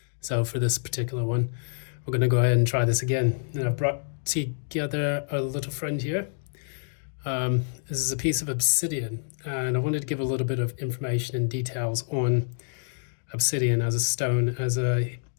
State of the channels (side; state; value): right; silent; digital silence